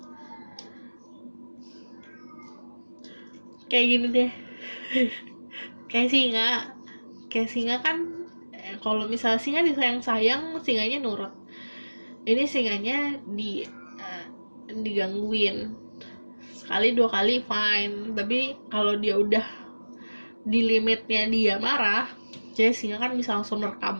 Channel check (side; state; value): both; inverted; correlation -1.00